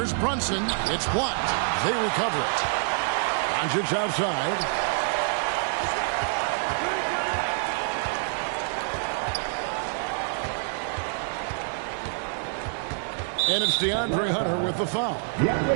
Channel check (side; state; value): left; silent; digital silence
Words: Brunson. It's blocked. They recover it. Doncic outside. And it's DeAndre Hunter with the foul.